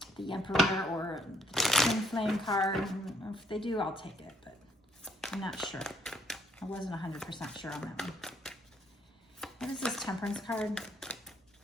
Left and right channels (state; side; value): normal; both; correlation 0.69